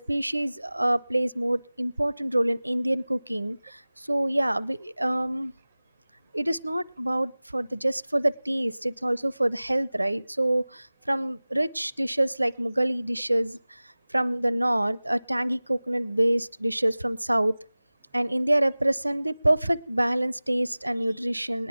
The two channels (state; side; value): inverted; both; correlation -0.99